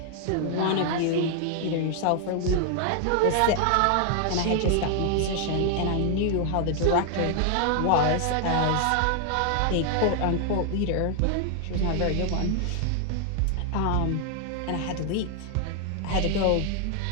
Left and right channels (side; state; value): both; different; correlation 0.00